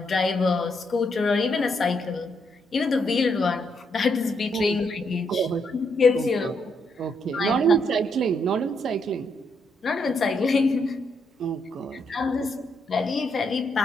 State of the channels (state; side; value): normal; both; correlation 0.77